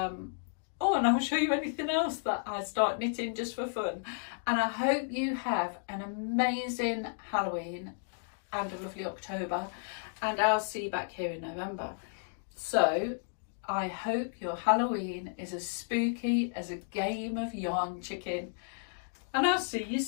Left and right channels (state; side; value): silent; right; digital silence